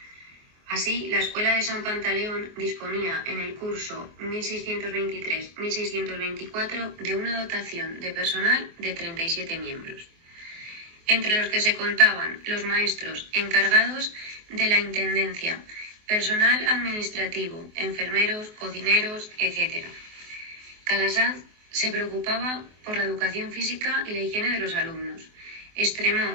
Así, la Escuela de San Pantaleón disponía en el curso 1623-1624 de una dotación de personal de 37 miembros, entre los que se contaban los maestros encargados de la intendencia, personal administrativo, enfermeros, cocineros, etc. Calasanz se preocupaba por la educación física y la higiene de los alumnos.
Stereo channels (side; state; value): left; late; 24 ms